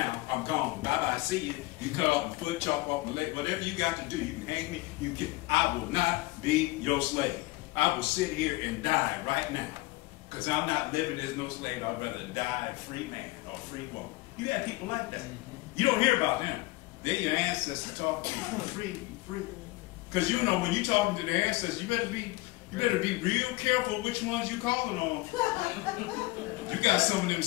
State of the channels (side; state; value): right; quieter; 20.7 dB